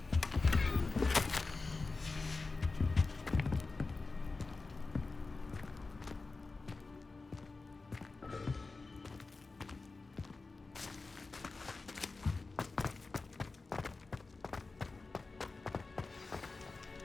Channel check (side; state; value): right; quieter; 3.8 dB